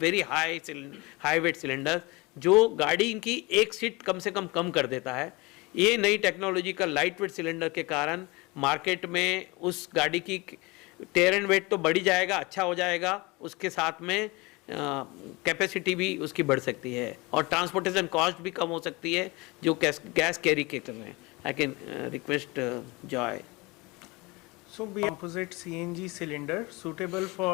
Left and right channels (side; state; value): right; quieter; 24.6 dB